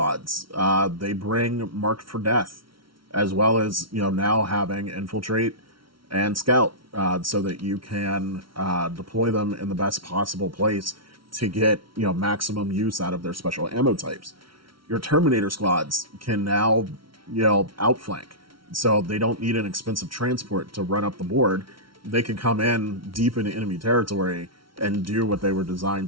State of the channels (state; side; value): late; left; 0.74 ms